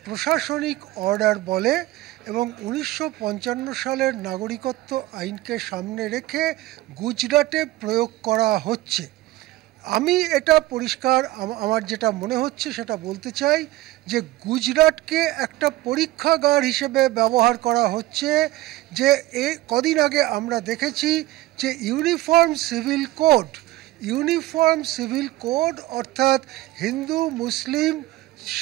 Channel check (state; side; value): quieter; left; 17.2 dB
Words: প্রশাসনিক অর্ডার বলে, এবং 1955 সালের নাগরিকত্ব আইনকে সামনে রেখে গুজরাটে প্রয়োগ করা হচ্ছে। আমি এটা পরিষ্কার আমার যেটা মনে হচ্ছে সেটা বলতে চাই যে গুজরাটকে একটা পরীক্ষাগার হিসেবে ব্যবহার করা হচ্ছে। যে কদিন আগে আমরা দেখেছি যে ইউনিফর্ম সিভিল কোড অর্থাৎ হিন্দু, মুসলিম,